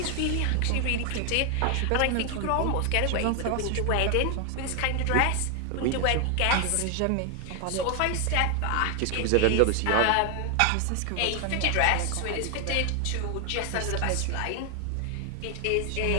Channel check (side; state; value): both; different; correlation 0.00